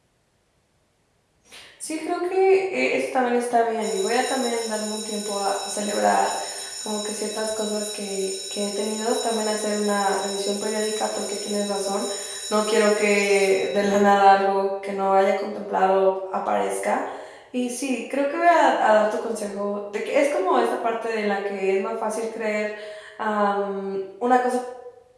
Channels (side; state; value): both; identical; correlation 1.00